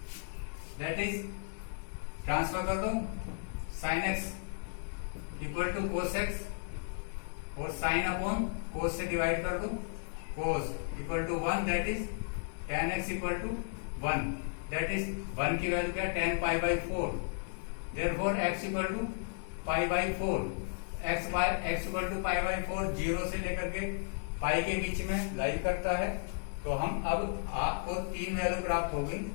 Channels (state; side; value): silent; right; digital silence